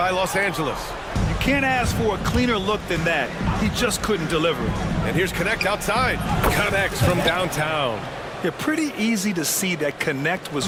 Los Angeles. You can't ask for a cleaner look than that. He just couldn't deliver. And here's Connect outside. Connects from downtown. Yeah, pretty easy to see that Connect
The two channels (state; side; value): identical; both; correlation 1.00